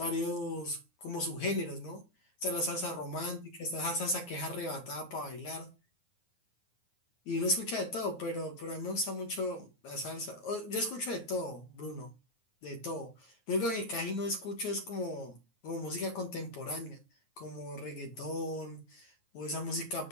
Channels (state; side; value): late; right; 9.5 ms